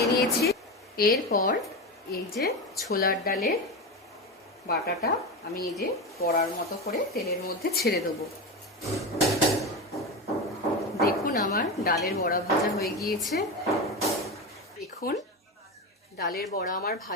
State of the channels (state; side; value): normal; both; correlation 0.20